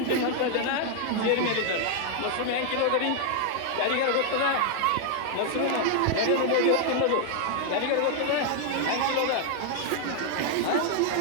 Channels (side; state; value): both; different; correlation 0.00